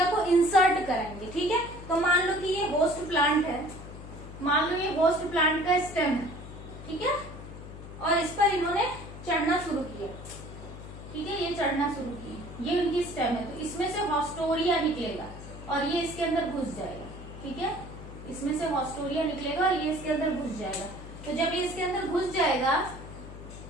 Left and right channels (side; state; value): left; noise; hum, 13 dB below the sound